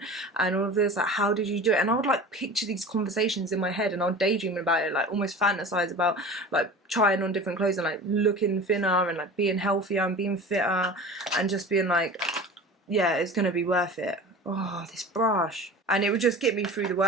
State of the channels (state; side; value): normal; both; correlation 0.37